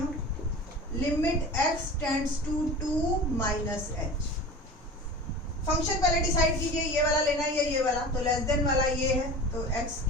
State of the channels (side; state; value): both; normal; correlation 0.35